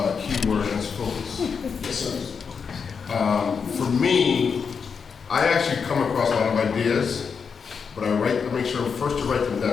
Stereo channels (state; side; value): quieter; right; 6.0 dB